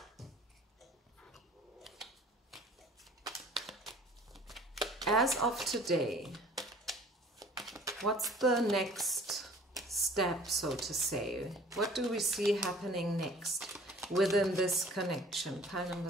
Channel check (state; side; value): normal; both; correlation 0.50